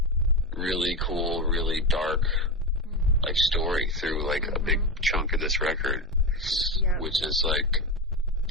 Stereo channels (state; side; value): normal; both; correlation 0.16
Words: really cool, really dark like story through like a big chunk of this record, which is like,